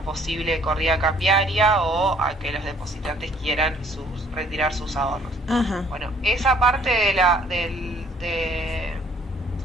posible corrida cambiaria o a que los depositantes quieran retirar sus ahorros. Ajá. Bueno, esa parte de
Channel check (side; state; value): both; normal; correlation 0.60